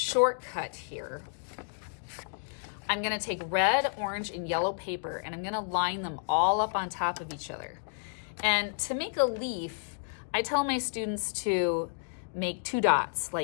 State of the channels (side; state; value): right; silent; digital silence